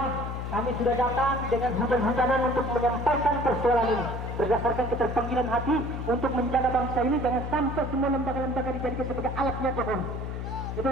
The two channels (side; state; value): left; noise; hum, 5 dB below the sound